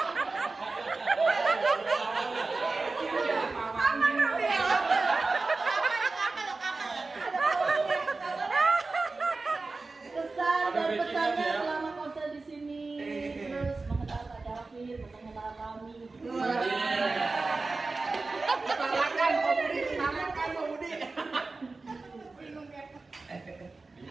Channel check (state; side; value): quieter; left; 3.7 dB